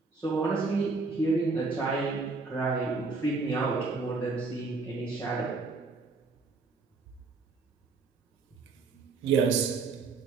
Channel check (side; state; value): left; quieter; 4.1 dB